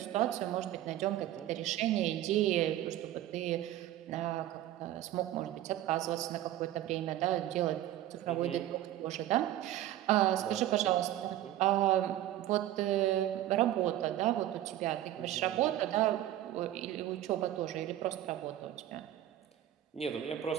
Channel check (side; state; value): left; quieter; 13.3 dB